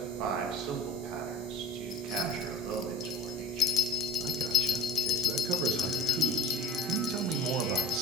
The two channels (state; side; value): normal; both; correlation 0.42